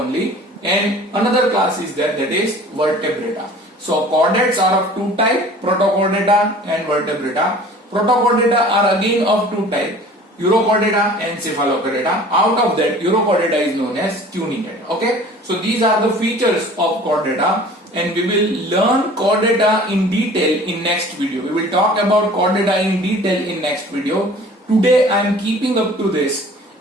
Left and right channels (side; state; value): both; normal; correlation 0.46